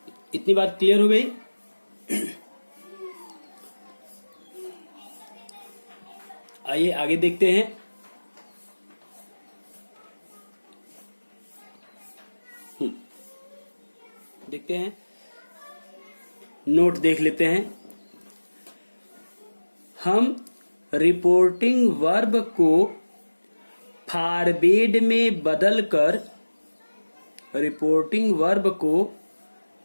इतनी बात क्लियर हो गई। आइए आगे देखते हैं। देखते हैं, नोट देख लेते हैं। हम रिपोर्टिंग वर्ब को फॉरवर्ड में बदलकर, रिपोर्टिंग वर्ब को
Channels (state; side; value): inverted; both; correlation -1.00